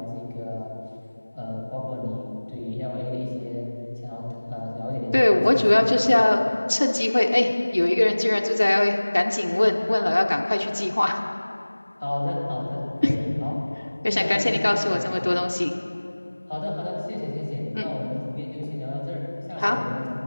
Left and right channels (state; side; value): inverted; both; correlation -1.00